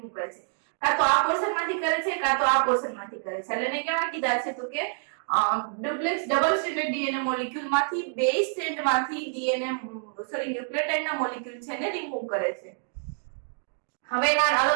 કરે છે કાં તો આ પોર્શન માંથી કરે છે કાં તો આ પોર્શન માંથી કરે છે એટલે એને કેવા કીધા છે તો કે duplex double standard DNA molecule માંથી બે સ્ટેન્ડ માંથી ન્યુક્લિયોટાઇડ ના મોલેક્યુલ છે ને રિમૂવ કરે છે હવે એના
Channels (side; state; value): left; silent; digital silence